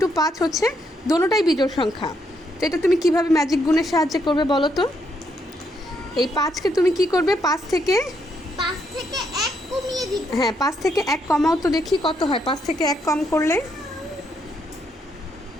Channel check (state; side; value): normal; both; correlation 0.76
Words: 5 হচ্ছে দোনোটাই বিজোড় সংখ্যা। তো এটা তুমি কিভাবে ম্যাজিক গুণের সাহায্যে করবে বলো তো? এই 5কে তুমি কি করবে? 5 থেকে 1 কমিয়ে দিবে। হ্যাঁ, 5 থেকে 1 কমাও তো দেখি কত হয়। 5 থেকে 1 কম করলে